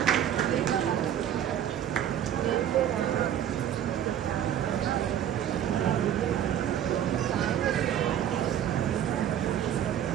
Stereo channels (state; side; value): quieter; left; 10.2 dB